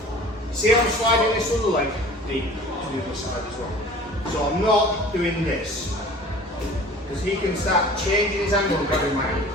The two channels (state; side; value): normal; both; correlation 0.44